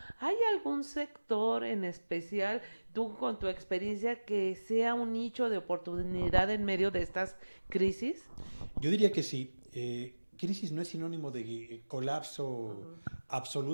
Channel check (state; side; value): inverted; both; correlation -1.00